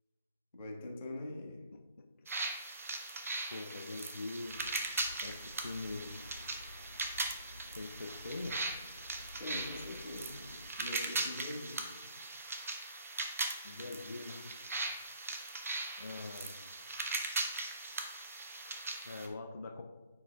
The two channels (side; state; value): both; inverted; correlation -0.58